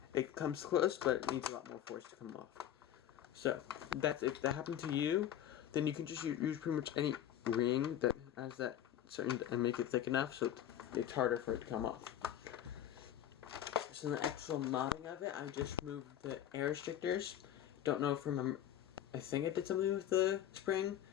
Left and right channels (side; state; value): right; quieter; 11.0 dB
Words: It comes close, but it needs a lot more force to come off. So if that happened to you, then you can just use pretty much any ring that has that certain and make it thick enough so it's harder for it to come off. So the actual modding of it, I just moved the air restrictors. Don't know if remember. I think I did something with the spring,